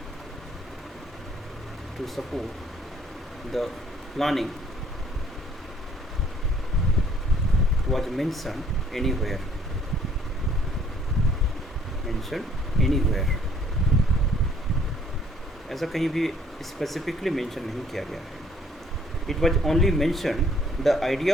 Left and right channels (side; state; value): both; normal; correlation 0.61